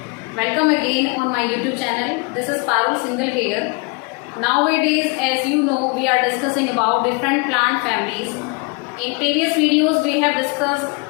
Welcome again on my YouTube channel. This is Parul Singhal here. Nowadays, as you know, we are discussing about different plant families. In previous videos, we have discussed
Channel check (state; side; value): quieter; right; 29.9 dB